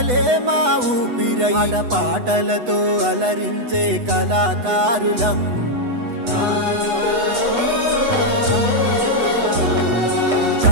మా ఊపిరై పాటలతో అలరించే కళాకారులం.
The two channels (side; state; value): left; late; 8.1 ms